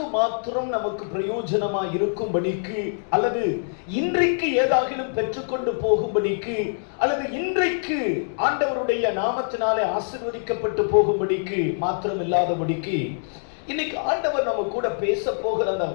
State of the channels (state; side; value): silent; right; digital silence